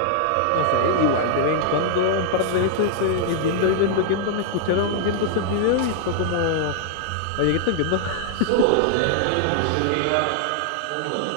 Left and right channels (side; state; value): both; different; correlation -0.01